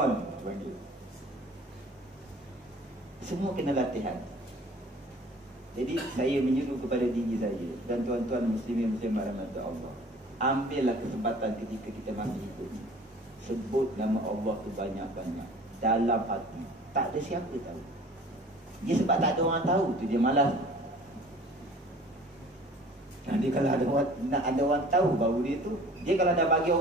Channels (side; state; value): both; normal; correlation 0.47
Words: panggil. Semua kena latihan. Jadi saya menyuruh kepada diri saya dan tuan-tuan muslimin muslimat rahmat Allah, ambillah kesempatan ketika kita masih hidup, sebut nama Allah tu banyak-banyak dalam hati. Tak ada siapa tahu. Dia sebab tak ada orang tahu tu dia malas. Nanti kalau ada orang tahu baru dia kalau dah bagi